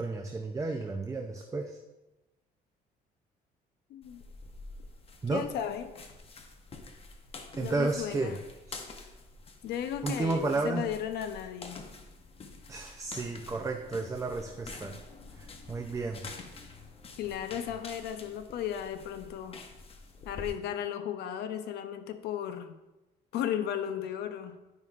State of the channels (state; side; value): normal; both; correlation 0.52